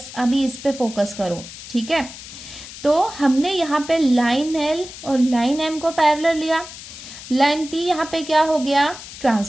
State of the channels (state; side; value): noise; left; hiss, 14 dB below the sound